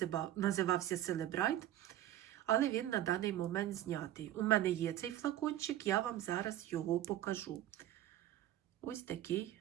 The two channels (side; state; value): left; quieter; 13.1 dB